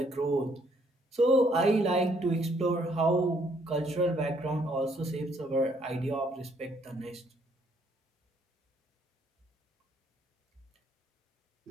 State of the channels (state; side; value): normal; both; correlation 0.67